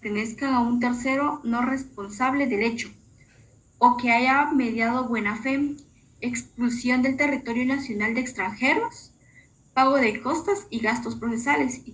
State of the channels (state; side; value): identical; both; correlation 1.00